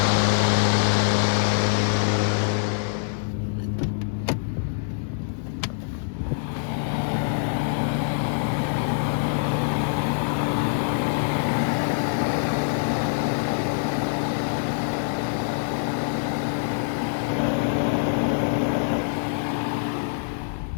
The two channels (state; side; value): silent; right; digital silence